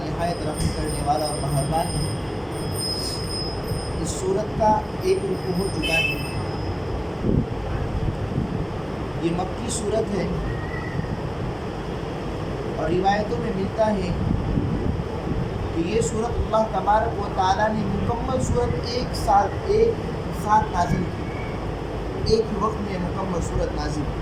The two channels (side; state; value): both; identical; correlation 1.00